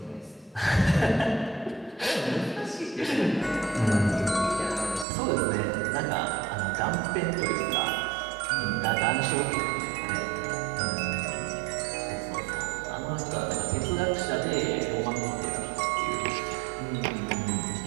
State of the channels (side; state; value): left; drops out; at 5.1 s